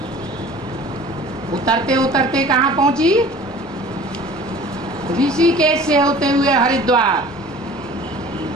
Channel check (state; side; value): normal; both; correlation 0.45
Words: उतरते उतरते कहाँ पहुंची? ऋषिकेश से होते हुए हरिद्वार,